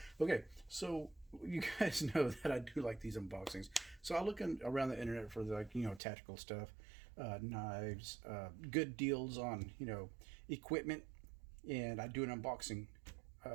Okay, so you guys know that I do like these unboxings. So I look around the internet for tactical stuff, knives, good deals on, equipment, and I do an unboxing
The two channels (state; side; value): drops out; left; at 6.0 s